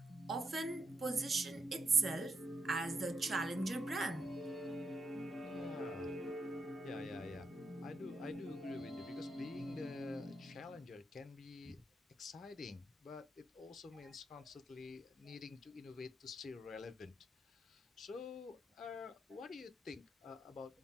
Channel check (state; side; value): normal; both; correlation 0.82